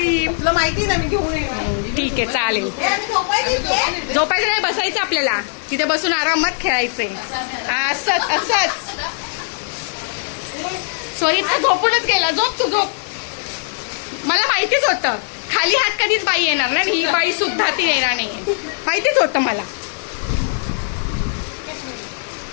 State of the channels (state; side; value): silent; right; digital silence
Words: तुला माहिती ना मी घेऊन येणार. ठीक आहे चालेल. झोपायचं नाही, बसायचं आपल्याला. तिथे बसून आरामात खेळायचंय. असंच सॉरी झोपूनच गेला. झोप. मला माहितीच होतं खाली हात कधीच बाई येणार ना. ही बाई सुद्धा ती येणार नाही. माहितीच होतं मला.